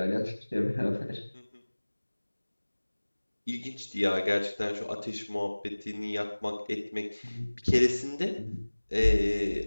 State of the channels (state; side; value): inverted; both; correlation -1.00